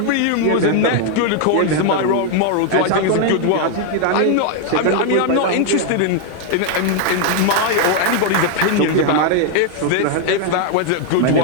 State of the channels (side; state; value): both; different; correlation 0.00